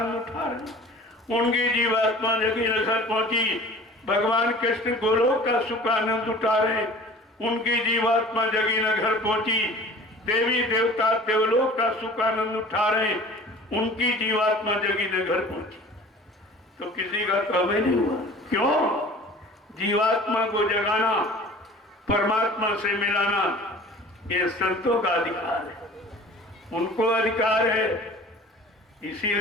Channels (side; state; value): both; normal; correlation 0.44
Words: उठा रहे, उनकी जीवात्मा जगी न घर पहुंची। भगवान कृष्ण गोलोक का सुख आनंद उठा रहे, उनकी जीवात्मा जगी न घर पहुंची। देवी देवता देवलोक का सुख आनंद उठा रहे, उनकी जीवात्मा जगी न घर पहुंची। तो किसी का काम ही नहीं हुआ। क्यों? जीवात्मा को जगाना, परमात्मा से मिलाना, ये संतों का अधिकार है। उनको अधिकार है।